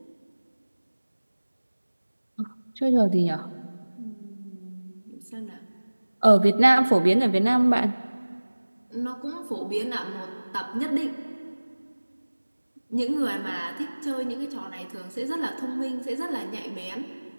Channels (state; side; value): inverted; both; correlation -1.00